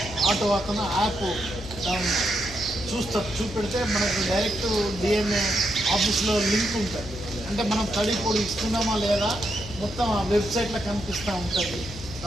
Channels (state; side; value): noise; left; hum, 12 dB below the sound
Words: ఆటో అతను యాప్ చూపెడితే మనకు డైరెక్ట్ డిఎంఏ ఆఫీస్లో లింక్ ఉంటుంది. అంటే మనం తడి పొడి ఇస్తున్నామా లేదా మొత్తం ఆ వెబ్సైట్లో కనిపిస్తూ ఉంటుంది.